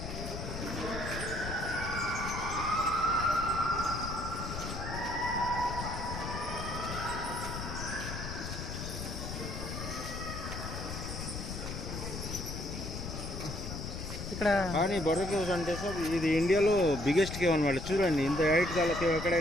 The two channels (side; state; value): left; noise; rumble, 6 dB below the sound